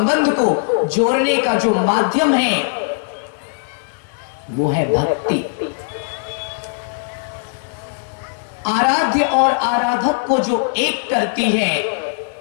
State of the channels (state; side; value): silent; right; digital silence